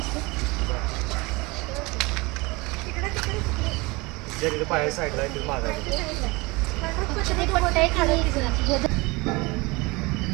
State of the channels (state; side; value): quieter; left; 24.7 dB